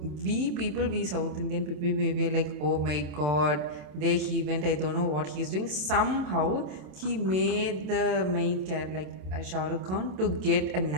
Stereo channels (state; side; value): late; left; 27 ms